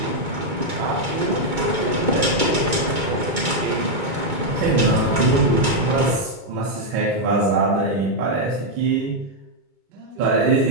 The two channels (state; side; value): late; left; 2.2 ms